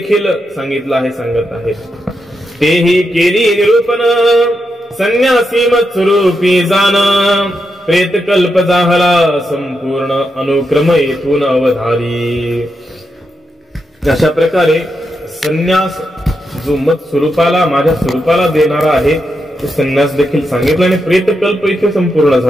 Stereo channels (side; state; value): both; normal; correlation 0.85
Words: सांगितला आहे, सांगत आहे. तेही केली निरूपण, संन्यासी मत स्वरूपी जाण, प्रेत कल्प जाहला संपूर्ण, अनुक्रम येथून अवधारी. अशा प्रकारे संन्यास जो मत स्वरूपाला, माझ्या स्वरूपाला देणारा आहे तो संन्यास देखील सांगितला आणि प्रेतकल्प इथे संपूर्ण